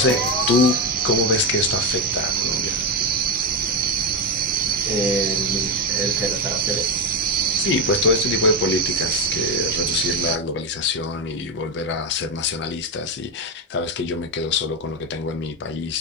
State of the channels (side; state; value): both; normal; correlation 0.11